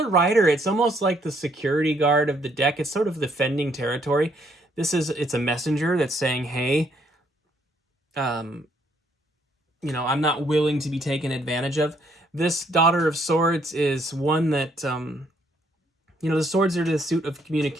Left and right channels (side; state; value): both; normal; correlation 0.69